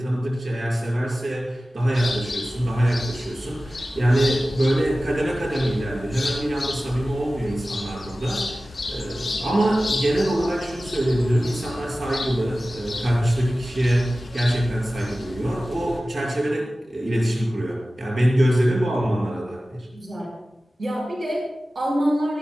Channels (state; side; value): normal; both; correlation 0.96